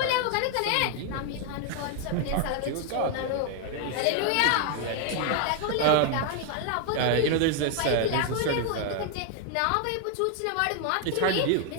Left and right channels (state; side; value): different; both; correlation 0.00